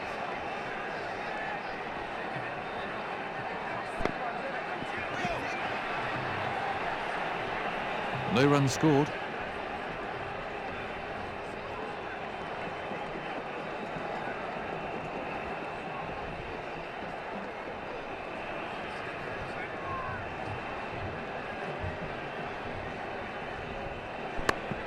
No runs scored.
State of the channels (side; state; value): both; identical; correlation 1.00